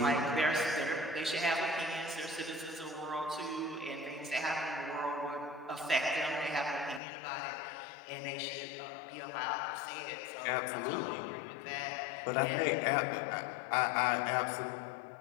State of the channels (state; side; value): drops out; right; at 7.0 s